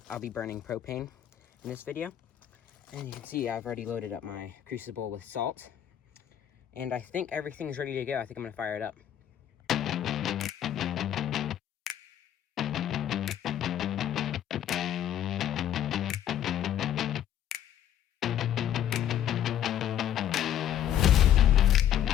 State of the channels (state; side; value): quieter; right; 10.7 dB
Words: I'll be burning propane in this video. And you can see I've already loaded up my crucible with salt. And I think everything's ready to go. I think I'm gonna fire it up.